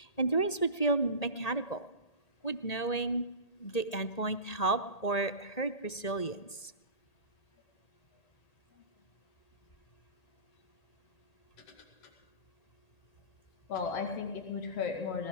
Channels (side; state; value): right; late; 1.8 ms